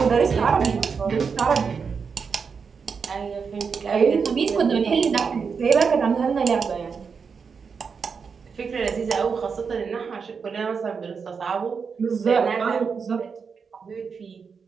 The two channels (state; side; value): quieter; left; 5.7 dB